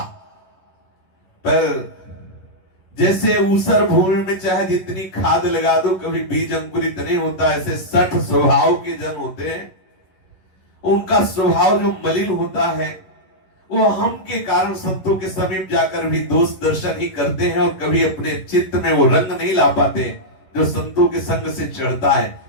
पर जैसे ऊसर भूमि में चाहे जितनी खाद लगा दो कभी बीज अंकुरित नहीं होता। ऐसे 60 स्वभाव के जन होते हैं, उनका स्वभाव जो मलिन होता है वो हम के कारण संतों के समीप जाकर भी दोष दर्शन ही करते हैं और कभी अपने चित्त में वो रंग नहीं ला पाते जो संतों के संग से चढ़ता है।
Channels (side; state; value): right; late; 11 ms